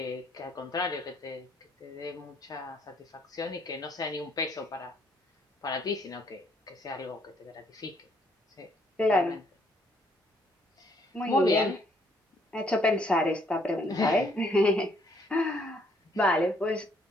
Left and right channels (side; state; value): both; normal; correlation 0.68